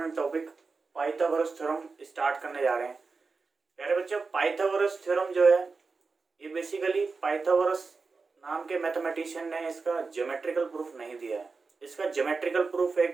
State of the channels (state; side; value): quieter; left; 4.4 dB